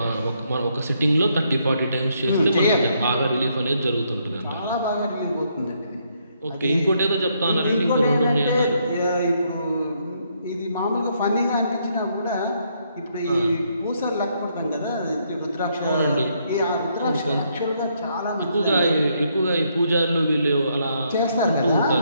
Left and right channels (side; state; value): both; inverted; correlation -0.73